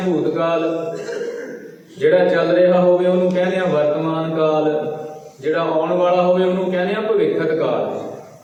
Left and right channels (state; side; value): identical; both; correlation 1.00